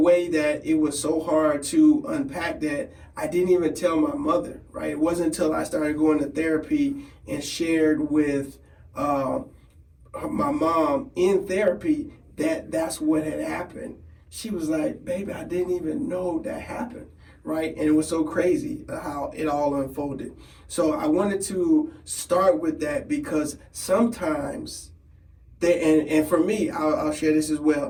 that it was so hard to unpack that I didn't even tell my mother, right? It wasn't until I started going to therapy and shared with my mom in therapy that that's what had happened. She was like, baby, I didn't even know that happened, right? And it was so crazy how it all unfolded. So I wanted to start with that because sometimes and for me, I'll share this as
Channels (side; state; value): both; identical; correlation 1.00